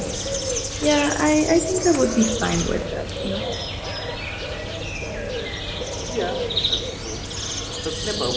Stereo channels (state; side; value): identical; both; correlation 1.00